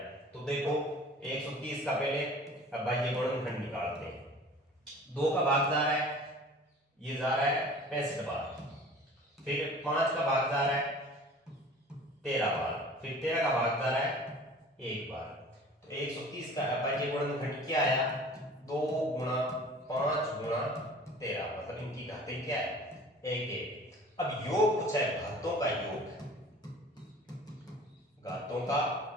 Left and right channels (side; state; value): both; normal; correlation 0.45